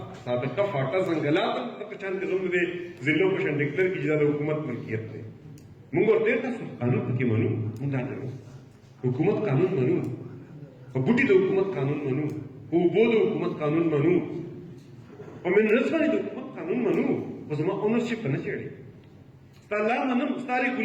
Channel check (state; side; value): identical; both; correlation 1.00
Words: سابقه فاټا ځنګلات هم دغه شان کې زموږ د ضلعو په شان ډیکلیئر کړي چې دا د حکومت ملکیت دی موږ ورته تاسو قانون پکې منو موږ دا نه حکومت قانون منو په بوټي د حکومت قانون منو په اوبو د حکومت قانون منو په منرلز باندې د حکومت قانون منو خو زما اونرشپ نه چېړي ستا لا منم ستا